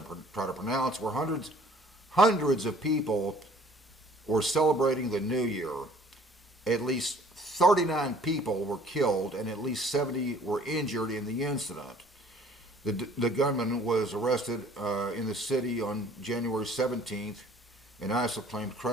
try to pronounce, where hundreds of people were celebrating the New Year. At least 39 people were killed and at least 70 were injured in the incident. The gunman was arrested in the city on January 17th, and ISIL claimed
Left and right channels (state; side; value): normal; both; correlation 0.54